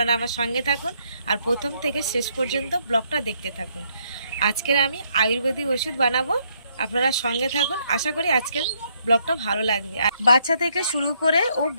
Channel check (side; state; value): both; inverted; correlation -0.72